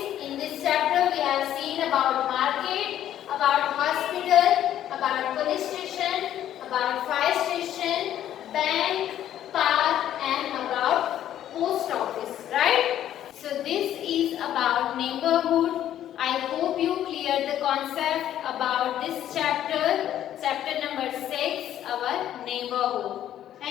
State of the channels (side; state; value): right; quieter; 11.4 dB